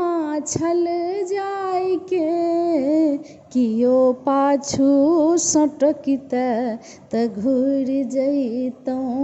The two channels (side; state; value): both; identical; correlation 1.00